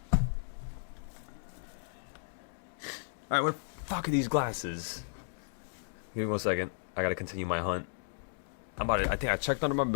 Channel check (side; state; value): right; silent; digital silence